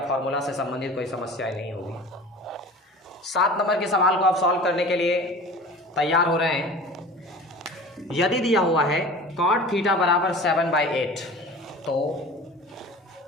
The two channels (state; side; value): normal; both; correlation 0.40